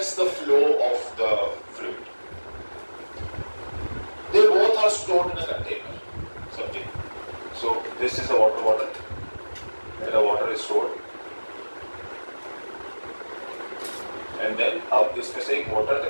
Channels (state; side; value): inverted; both; correlation -1.00